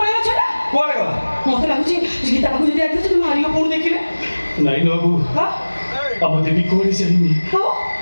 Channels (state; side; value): inverted; both; correlation -1.00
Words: ପଳେଇବ ଛଟା କୁଆଡ଼େ ଗଲା ମୋତେ ଲାଗୁଛି ଗୀତା ପାଖକୁ ଯଦି ଆସିଲେ ତୁମେ ମାରିବ ପୁଣି ଦେଖିଲେ ନାଇଁ ବାବୁ ଆମ ଦେବୀ କୁଆଡ଼େ ଯାଇନି